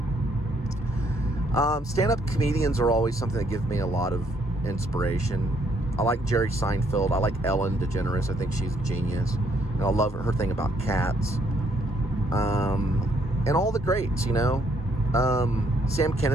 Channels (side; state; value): both; normal; correlation 0.69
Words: Stand-up comedians are always something that give me a lot of inspiration. I like Jerry Seinfeld. I like Ellen DeGeneres. I think she's a genius. And I love her thing about cats. And all the greats, you know. Sam